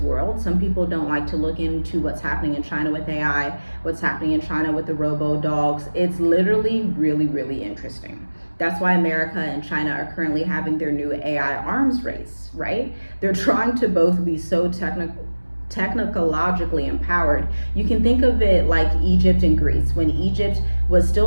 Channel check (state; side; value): inverted; both; correlation -1.00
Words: Some people don't like to look into what's happening in China with AI, what's happening in China with the robo-dogs. It's literally really, really interesting. That's why America and China are currently having their new AI arms race, right? They're trying to both be so technologically empowered. You can think of it like Egypt and Greece, when Egypt was